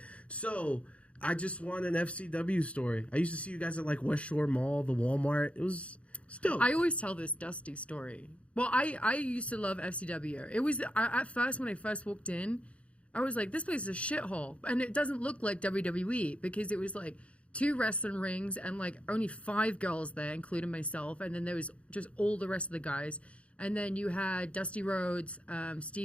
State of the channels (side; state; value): right; late; 0.062 ms